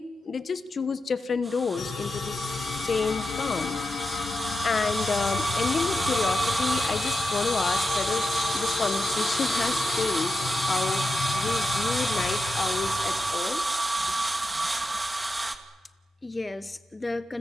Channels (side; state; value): both; normal; correlation 0.89